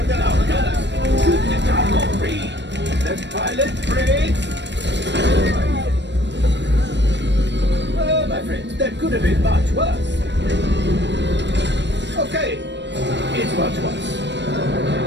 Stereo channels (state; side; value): late; left; 0.52 ms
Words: alarm gunners! Shoot the cargo free! The pilot brakes! Oh, my friends, that could have been much worse. Okay, it's much worse.